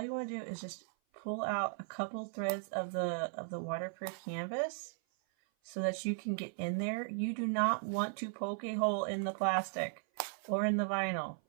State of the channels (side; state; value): left; silent; 53 dB below the other